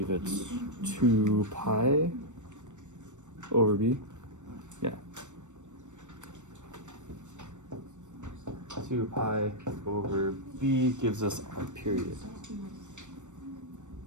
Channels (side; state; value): left; late; 0.84 ms